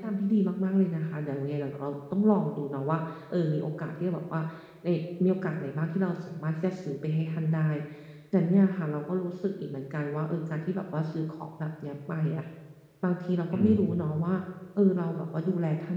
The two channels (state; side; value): identical; both; correlation 1.00